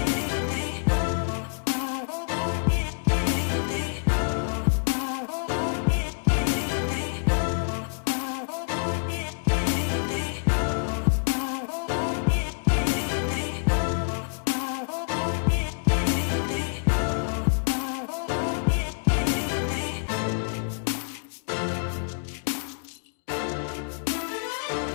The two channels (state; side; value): silent; right; digital silence